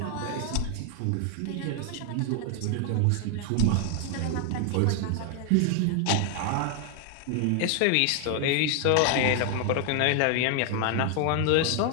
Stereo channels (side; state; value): both; different; correlation 0.00